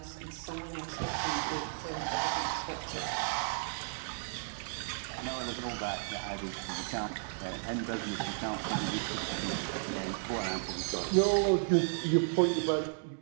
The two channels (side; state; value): left; silent; 55 dB below the other